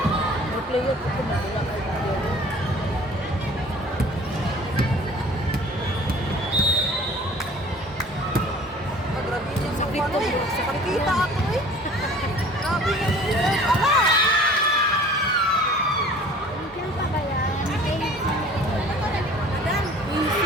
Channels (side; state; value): both; normal; correlation 0.48